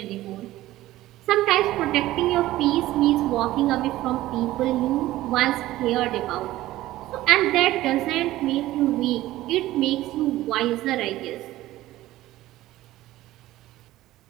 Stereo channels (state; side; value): quieter; left; 15.9 dB